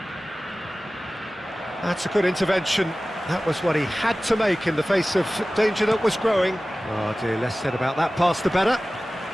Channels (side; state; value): both; normal; correlation 0.97